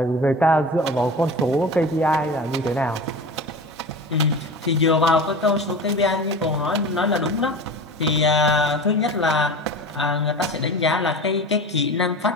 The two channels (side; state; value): both; normal; correlation 0.32